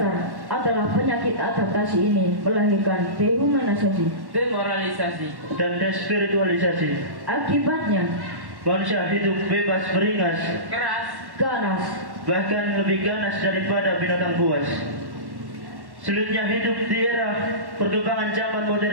adalah penyakit adaptasi ini melahirkan dehumanisasi. Demoralisasi. Dan despiritualisasi. Akibatnya, Manusia hidup bebas beringas, Keras. ganas, bahkan lebih ganas daripada binatang buas. Sulitnya hidup di era perkembangan zaman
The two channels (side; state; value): left; late; 1.1 ms